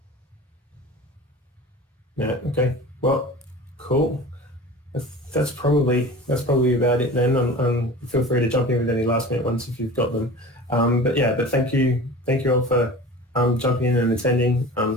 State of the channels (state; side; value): normal; both; correlation 0.37